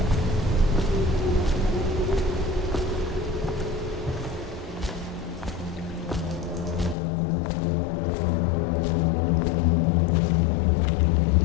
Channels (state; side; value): drops out; right; at 7.0 s